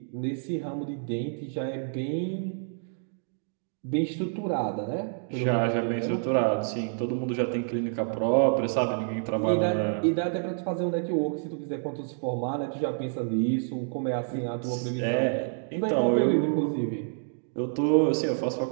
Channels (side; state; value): left; silent; digital silence